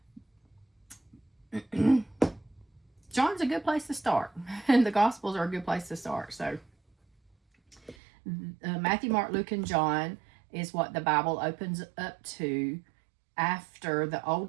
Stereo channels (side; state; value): left; drops out; at 8.0 s